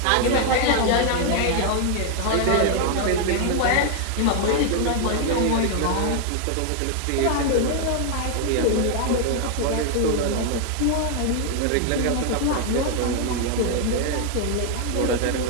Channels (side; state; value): both; different; correlation 0.00